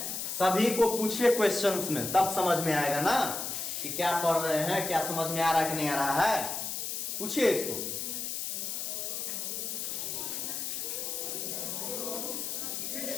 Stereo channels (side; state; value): left; noise; hiss, 3 dB below the sound